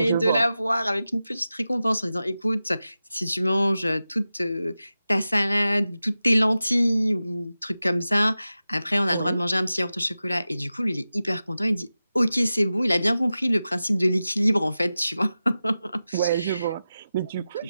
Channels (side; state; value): both; inverted; correlation -0.93